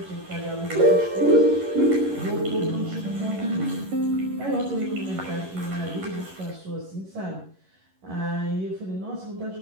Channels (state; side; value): late; left; 11 ms